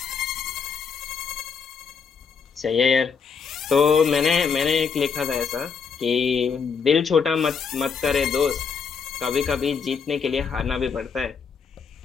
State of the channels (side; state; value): right; quieter; 5.9 dB